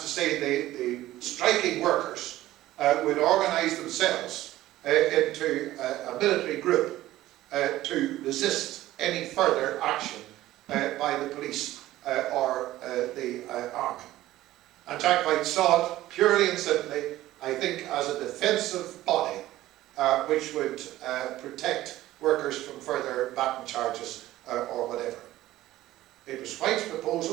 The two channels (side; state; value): left; quieter; 15.4 dB